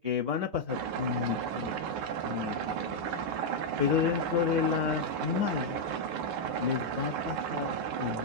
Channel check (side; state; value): left; late; 8.5 ms